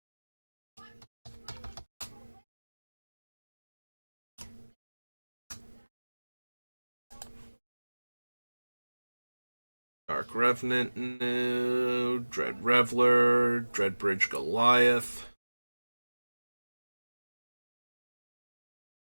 Dark Revenant, no. Dread Reveler, Dreadbridge Goliath.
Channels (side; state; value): both; inverted; correlation -1.00